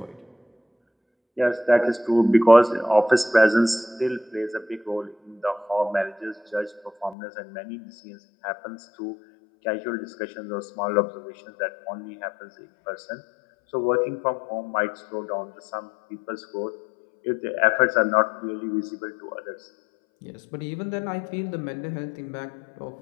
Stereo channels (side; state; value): right; drops out; at 7.2 s